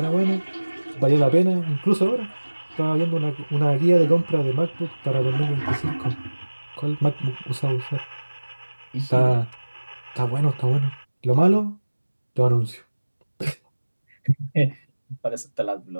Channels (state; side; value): inverted; both; correlation -1.00